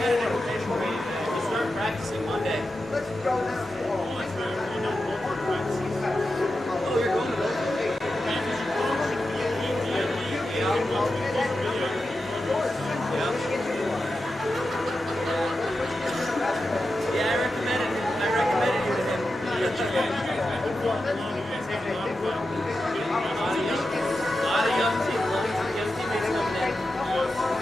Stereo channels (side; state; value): both; normal; correlation 0.90